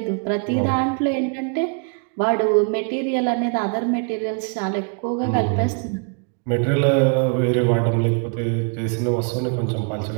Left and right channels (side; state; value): left; quieter; 38.4 dB